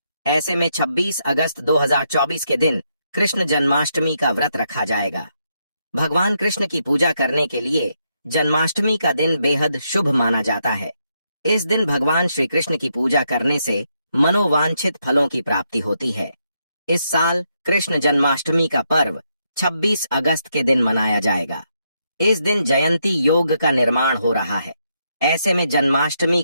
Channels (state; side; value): inverted; both; correlation -0.79